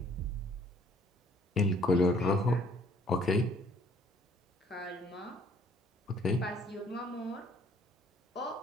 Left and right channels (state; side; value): normal; both; correlation 0.60